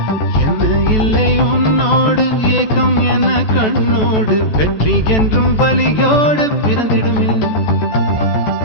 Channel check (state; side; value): late; right; 14 ms